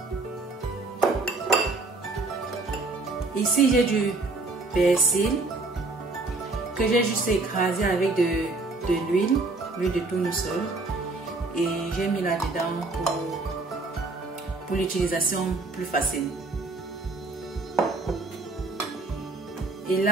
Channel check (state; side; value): quieter; left; 3.4 dB